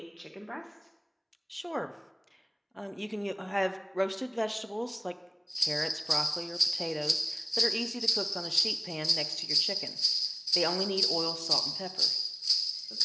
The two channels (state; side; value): identical; both; correlation 1.00